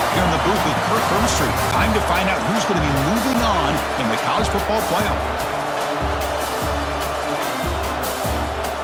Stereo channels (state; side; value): identical; both; correlation 1.00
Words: here in the booth with Kirk Hermstreet. Time to find out who's going to be moving on in the college football playoff.